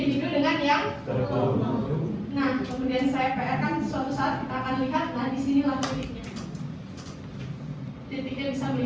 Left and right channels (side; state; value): both; identical; correlation 1.00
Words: dengan yang nah, kemudian saya PR kan suatu saat kita akan lihat, nah disinilah titiknya. Titiknya bisa